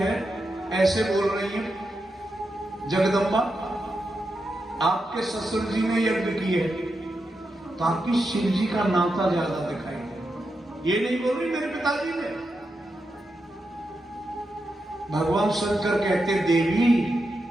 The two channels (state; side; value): normal; both; correlation 0.87